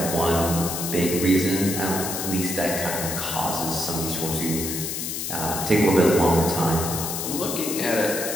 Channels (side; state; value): left; noise; hiss, 4 dB below the sound